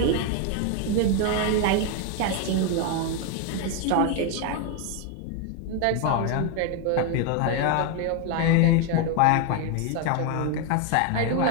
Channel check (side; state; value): both; different; correlation 0.01